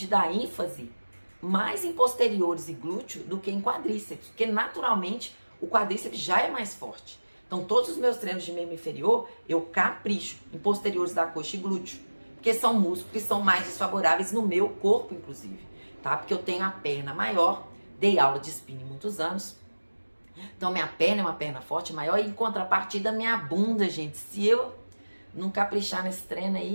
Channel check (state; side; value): inverted; both; correlation -1.00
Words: dar ênfase mais em posteriores e glúteo do que em quadríceps, porque naturalmente o quadríceps já é mais forte. Então, todos os meus treinos de membro inferior, eu capricho em posteriores da coxa e glúteo, porque são músculos que são mais desfavoráveis no meu corpo, inclusive, tá? Porque eu tenho a perna maior, dei aula de spinning muitos anos, então minha perna é uma perna forte, maior, e em contrapartida minha bunda, gente, se eu não caprichar nesse treino